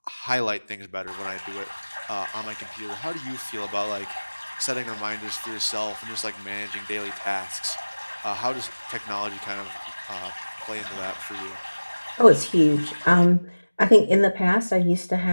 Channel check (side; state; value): both; inverted; correlation -1.00